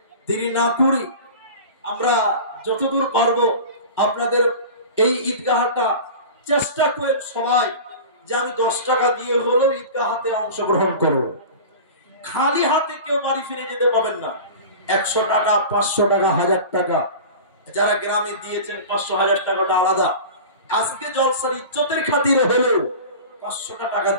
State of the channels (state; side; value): inverted; both; correlation -0.34